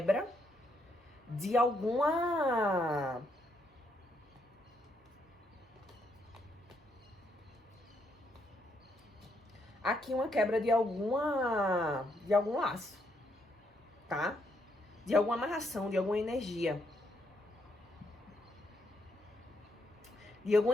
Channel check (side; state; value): both; normal; correlation 0.75